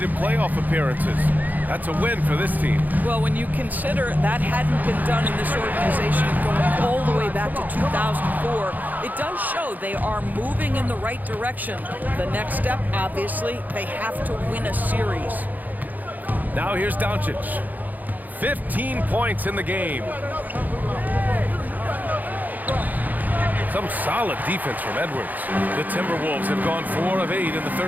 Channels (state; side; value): late; left; 0.082 ms